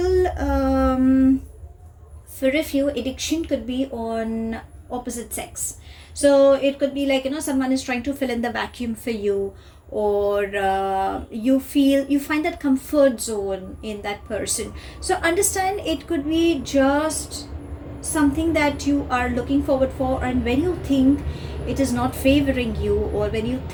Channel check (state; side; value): identical; both; correlation 1.00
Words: for a few, addiction could be on opposite sex. So it could be like, someone is trying to fill in the vacuum for you, or you find that comfort zone in that person. So understand, it could be just something that you are looking forward for, and when you think it is not favoring you, or when you